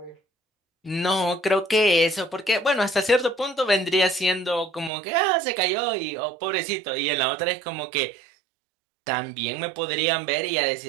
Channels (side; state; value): left; drops out; at 4.9 s